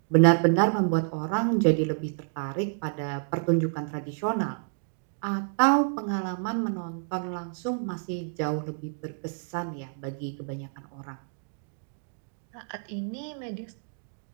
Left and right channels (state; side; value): silent; left; digital silence